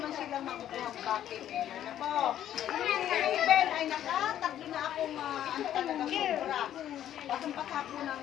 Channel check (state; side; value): quieter; right; 11.3 dB